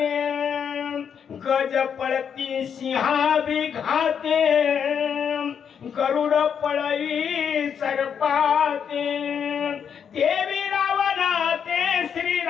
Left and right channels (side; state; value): right; quieter; 7.6 dB